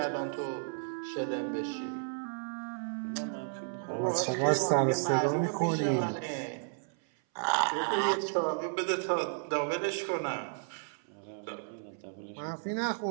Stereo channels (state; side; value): silent; left; 56 dB below the other